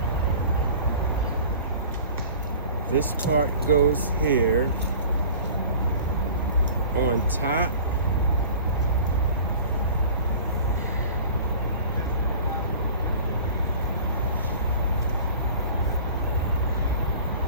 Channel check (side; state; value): both; inverted; correlation -0.43